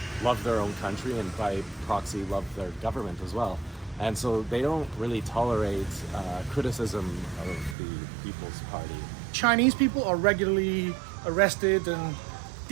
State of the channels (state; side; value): drops out; left; at 7.8 s